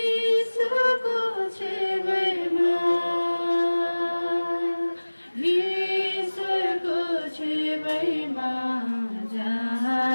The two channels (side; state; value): both; inverted; correlation -1.00